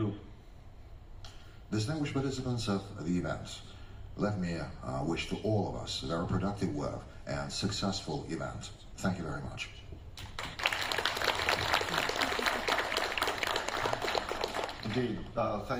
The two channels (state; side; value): identical; both; correlation 1.00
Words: Distinguished participants of the event, let me wish to all of us a very productive work and successful event. Thank you very much. Indeed.